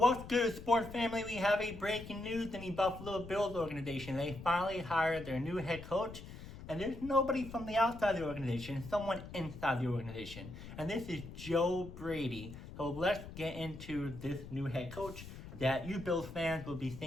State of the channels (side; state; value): left; noise; rumble, 13 dB below the sound